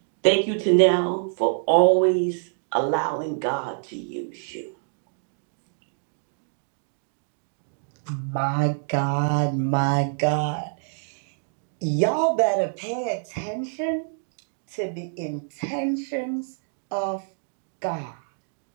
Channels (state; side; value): silent; left; digital silence